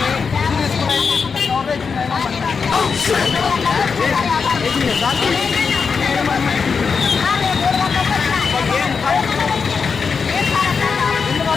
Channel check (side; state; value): right; quieter; 5.5 dB